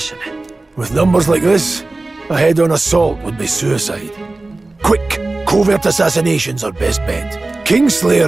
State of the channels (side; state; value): left; quieter; 3.1 dB